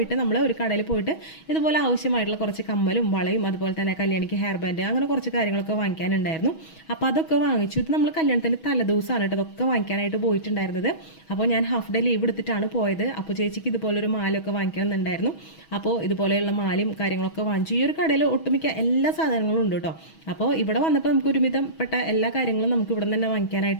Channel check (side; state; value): right; late; 6.2 ms